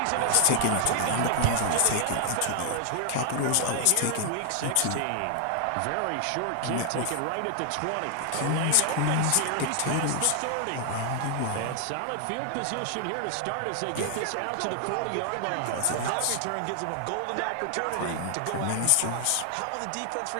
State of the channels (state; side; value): different; both; correlation 0.00